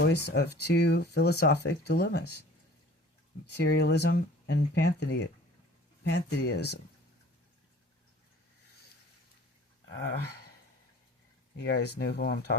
of two philosophic dilemmas: materialism and pantheism. You guys know who I'm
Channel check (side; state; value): both; normal; correlation 0.48